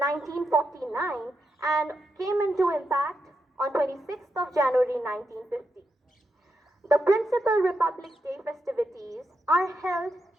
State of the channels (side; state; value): both; normal; correlation 0.84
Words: and came into impact on 26th of January 1950. The principal Republic Day festivities are held